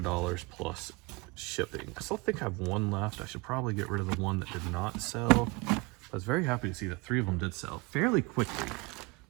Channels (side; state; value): left; quieter; 25.3 dB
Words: plus shipping. I still think I have one left. I should probably get rid of the one that did not sell. I was very happy to see that 3 of them did sell fairly quickly,